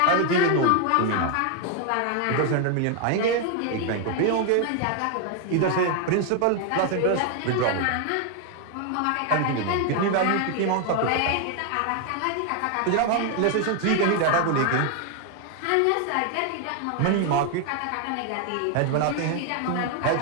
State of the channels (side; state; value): both; different; correlation 0.01